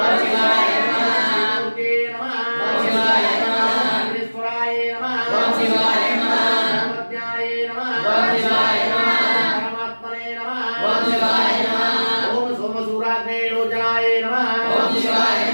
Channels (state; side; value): inverted; both; correlation -1.00